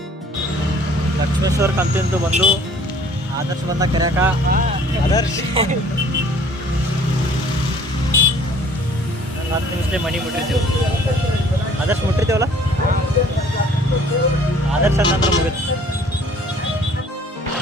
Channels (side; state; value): both; normal; correlation 0.55